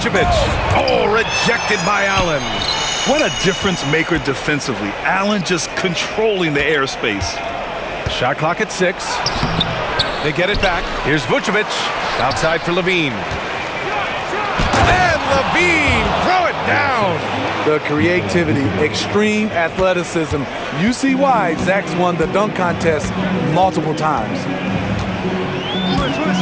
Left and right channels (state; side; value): identical; both; correlation 1.00